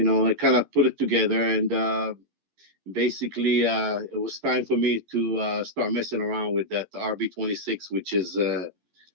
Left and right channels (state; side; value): late; left; 12 ms